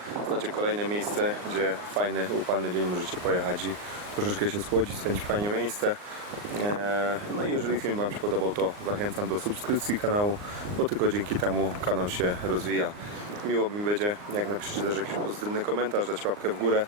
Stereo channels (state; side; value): late; left; 39 ms